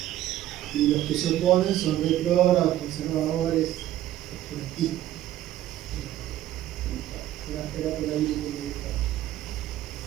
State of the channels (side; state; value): left; quieter; 13.5 dB